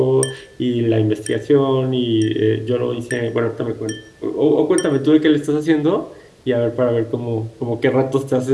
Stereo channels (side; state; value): both; identical; correlation 1.00